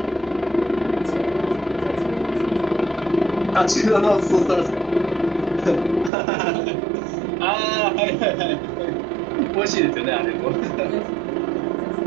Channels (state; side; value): drops out; left; at 6.1 s